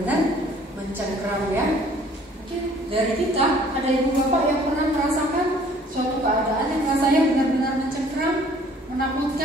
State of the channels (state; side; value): normal; both; correlation 0.56